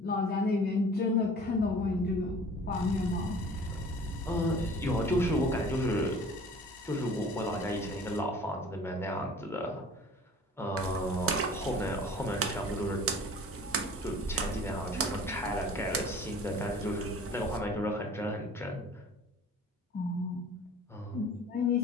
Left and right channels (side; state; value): both; normal; correlation 0.46